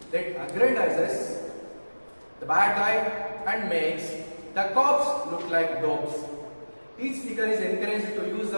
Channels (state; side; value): inverted; both; correlation -1.00